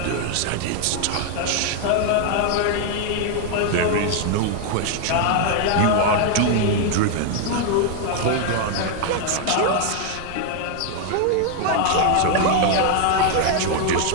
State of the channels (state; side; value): different; both; correlation 0.00